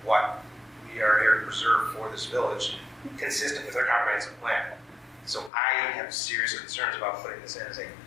what we are here to preserve for this village, consistent with our comprehensive plan. So I have serious concerns about putting this in as an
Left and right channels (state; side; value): drops out; right; at 5.5 s